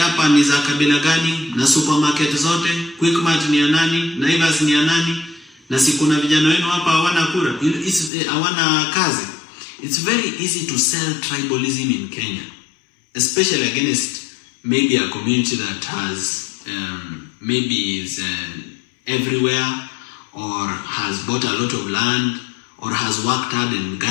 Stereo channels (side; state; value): right; drops out; at 8.1 s